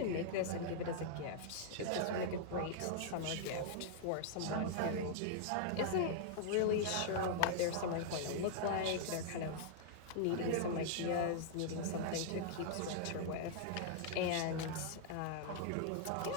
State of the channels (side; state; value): both; different; correlation -0.01